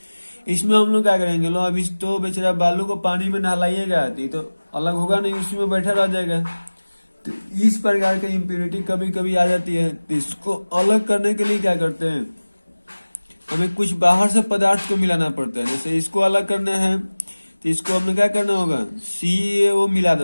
इसमें हम लोग क्या करेंगे, लो अब इस तो बेचारा बालू को पानी में नहलाइएगा तो अलग होगा नहीं, उसी में बैठा रह जाएगा। तो इस प्रकार की इम्प्यूरिटी कभी कभी आ जाती है। तो इसको अलग करने के लिए क्या करते हैं, हमें कुछ बाहर से पदार्थ को मिलाना पड़ता है। जैसे इसको अलग करना है तो इसको हमें क्या करना होगा, CaO मिला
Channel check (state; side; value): inverted; both; correlation -1.00